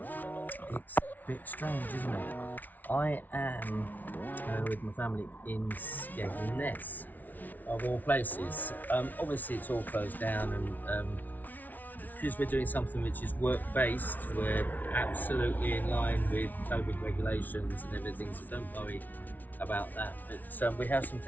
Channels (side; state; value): right; late; 0.080 ms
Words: It's a bit strange, isn't it? I am with my family in Skegness, of all places. Obviously, it's all closed down, and because we're doing something which is work-based, we're absolutely in line with COVID regulations and everything, so don't worry about that. But we have some